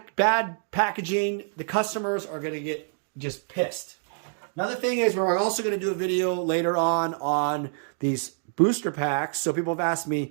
packaging, the customers are going to get just pissed. Another thing is, we're also going to do a video later on these booster packs. So people have asked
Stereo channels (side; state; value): left; silent; digital silence